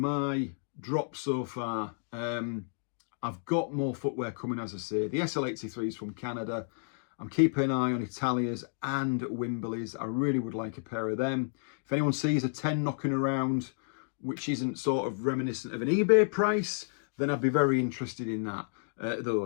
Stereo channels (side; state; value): right; silent; digital silence